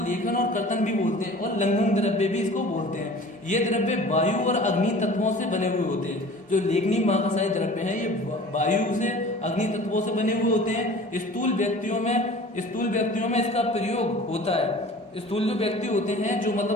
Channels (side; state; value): both; normal; correlation 0.43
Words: लेखन और कर्तन भी बोलते हैं और लंघन द्रव्य भी इसको बोलते हैं। ये द्रव्य वायु और अग्नि तत्वों से बने हुए होते हैं। जो लेखनीय महाकषाय द्रव्य हैं ये वायु से, अग्नि तत्वों से बने हुए होते हैं। स्थूल व्यक्तियों में इसका प्रयोग होता है। स्थूल जो व्यक्ति होते हैं, जो